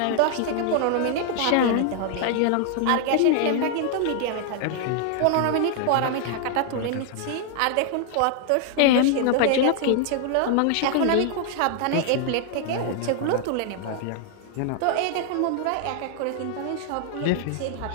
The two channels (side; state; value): both; different; correlation 0.00